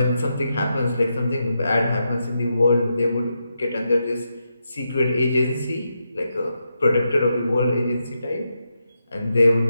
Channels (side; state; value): both; inverted; correlation -0.85